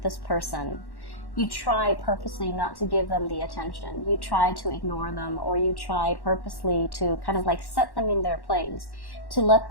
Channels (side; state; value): right; late; 1.1 ms